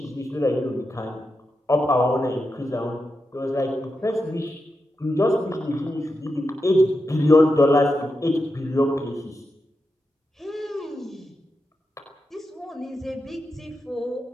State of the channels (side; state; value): both; normal; correlation 0.88